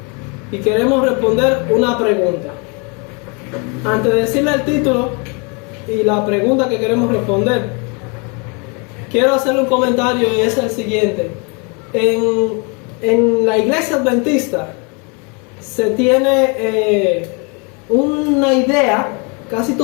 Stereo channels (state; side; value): quieter; right; 33.1 dB